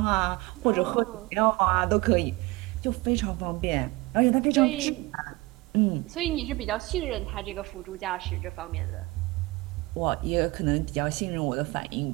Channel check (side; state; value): left; quieter; 22.6 dB